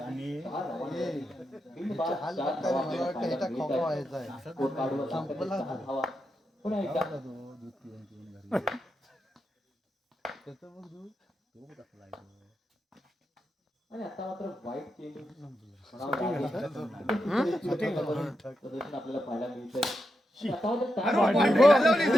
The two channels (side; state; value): both; normal; correlation 0.86